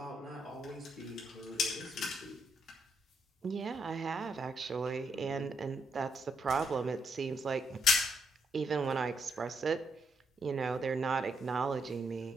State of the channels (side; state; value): both; normal; correlation 0.77